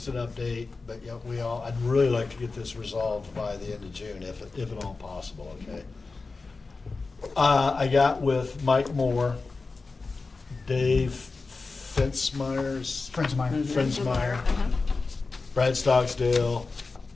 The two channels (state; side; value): quieter; right; 4.0 dB